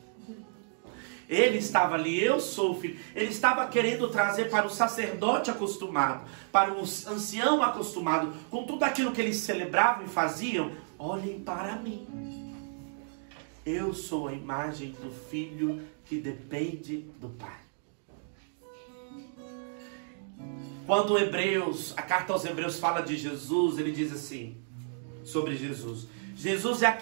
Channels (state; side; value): silent; left; digital silence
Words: Ele estava ali, eu sou o filho. Ele estava querendo trazer para o sacerdote acostumado, para o ancião acostumado, com tudo aquilo que eles celebravam e faziam, olhem para mim. Eu sou a imagem do filho que depende do pai. Quando a carta aos Hebreus fala de Jesus, ele diz assim, sobre Jesus. Jesus é